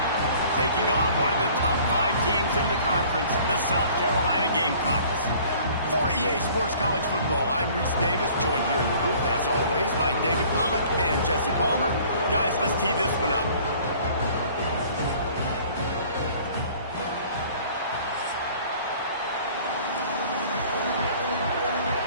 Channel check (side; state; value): both; inverted; correlation -0.52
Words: taking on one of the top 5 teams in the conference, the South Carolina Gamecocks. For EA Sports College Football, I'm Reese Davis, joined here in the booth, as always, by David Pollack and Jesse Palmer. Guys, let's tee this one up.